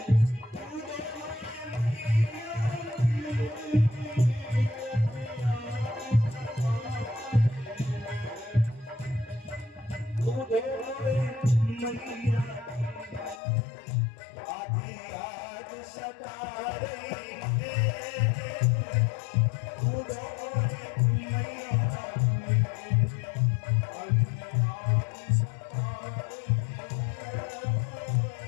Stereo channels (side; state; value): right; drops out; at 13.4 s